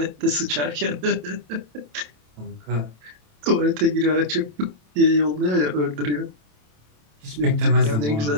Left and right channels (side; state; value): left; late; 27 ms